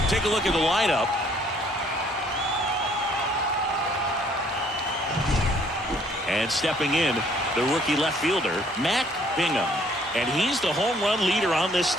Take a look at the lineup. And stepping in, the rookie left fielder, Matt Bingham. And he's the home run leader on this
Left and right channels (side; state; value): both; normal; correlation 0.62